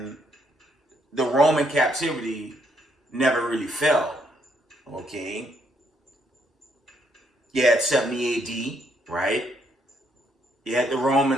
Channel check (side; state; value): both; normal; correlation 0.72